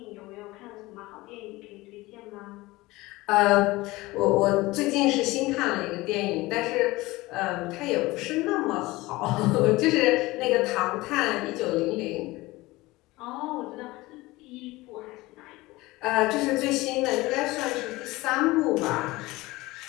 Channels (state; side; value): quieter; right; 20.3 dB